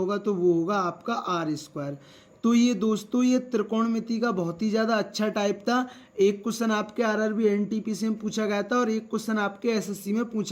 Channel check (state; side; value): identical; both; correlation 1.00